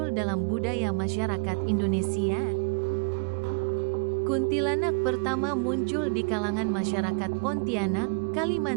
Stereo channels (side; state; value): left; quieter; 34.7 dB